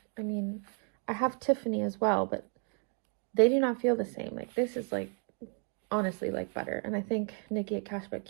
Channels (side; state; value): left; quieter; 38.0 dB